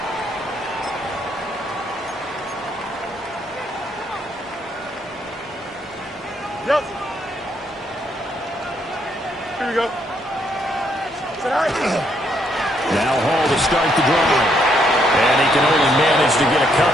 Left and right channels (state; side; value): normal; both; correlation 0.73